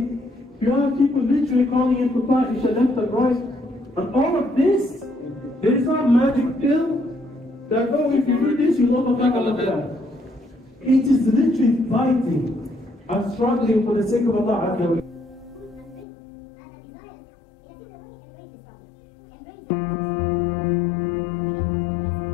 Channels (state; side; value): drops out; right; at 16.1 s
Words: you have people literally calling in for Isha left and right. And all of this, there is not magic pill that, oh, if you do this, you'll overcome all of that. It is literally fighting and struggling for the sake of Allah Azza wa Jalla.